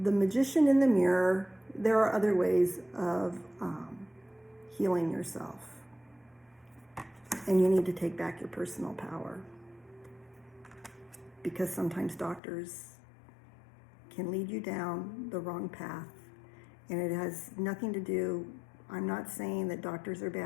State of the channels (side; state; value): right; drops out; at 12.4 s